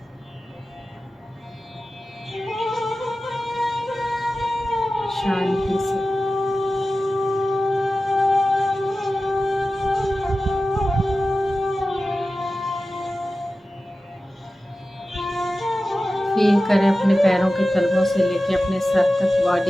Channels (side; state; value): both; normal; correlation 0.95